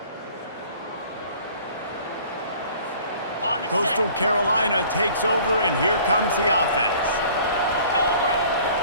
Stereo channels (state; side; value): inverted; both; correlation -0.51